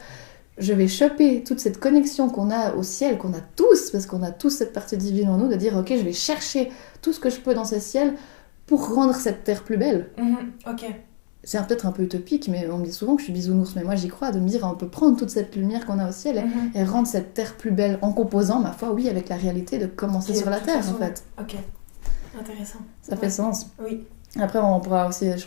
je vais choper toute cette connexion qu'on a au ciel, qu'on a tous, parce qu'on a tous cette partie divine en nous, de dire, ok, je vais chercher tout ce que je peux dans ce ciel pour rendre cette terre plus belle. Ok. C'est peut-être un peu utopique, mais on me dit souvent que je suis bisounours, mais moi j'y crois, de me dire on peut prendre toute cette lumière qu'on a au ciel et rendre cette terre plus belle en composant, ma foi, oui, avec la réalité de commencer sur la terre en fait. Ok, intéressant. Ça fait sens. Oui. Après on pourra aussi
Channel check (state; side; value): silent; right; digital silence